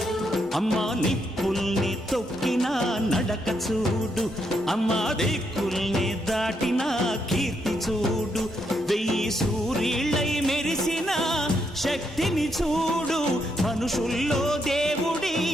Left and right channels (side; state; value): both; normal; correlation 0.78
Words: అమ్మా నిప్పుల్ని తొక్కిన నడక చూడు అమ్మా దిక్కుల్ని దాటిన కీర్తి చూడు వెయ్యి సూర్యుళ్ళై మెరిసిన శక్తిని చూడు మనుషుల్లో దేవుడి